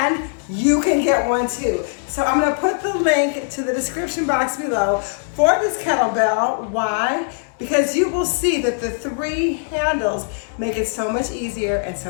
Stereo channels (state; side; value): silent; right; digital silence